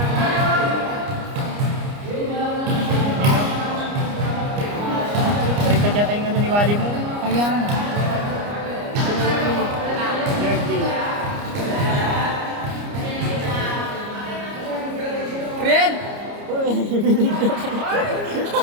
Baliktad yata yung ano ni Wally mo. Kaya nga. Yard day. Red!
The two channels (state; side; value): late; left; 29 ms